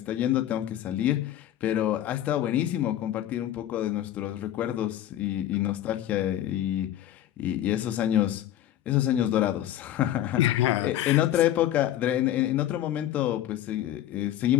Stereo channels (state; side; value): quieter; right; 12.4 dB